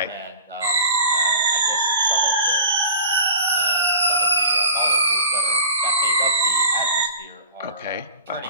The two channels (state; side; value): inverted; both; correlation -0.40